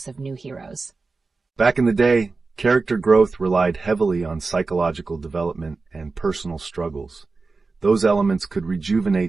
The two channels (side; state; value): left; quieter; 4.0 dB